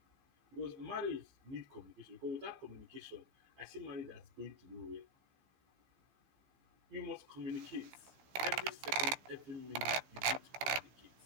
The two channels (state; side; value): late; left; 16 ms